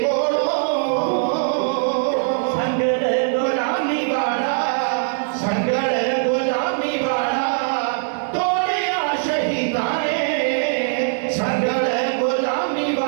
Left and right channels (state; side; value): silent; left; digital silence